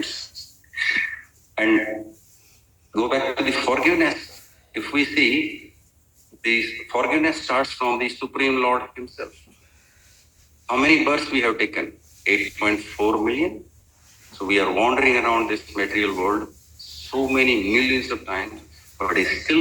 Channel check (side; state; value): both; identical; correlation 1.00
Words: And go back to the forgiveness. If we see, the forgiveness starts from the Supreme Lord Himself. How many births we have taken? 8.4 million. So we are wandering around this material world so many millions of times, but He's